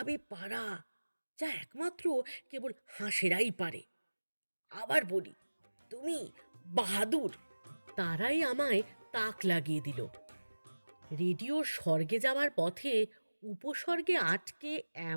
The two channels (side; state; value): both; inverted; correlation -1.00